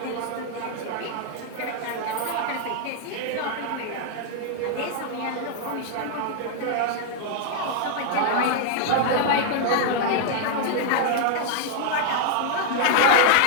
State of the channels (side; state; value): both; different; correlation 0.00